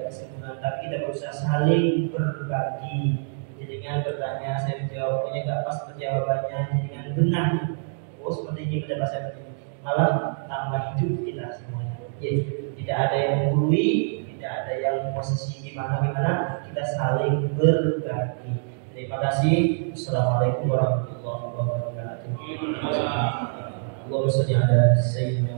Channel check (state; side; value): silent; left; digital silence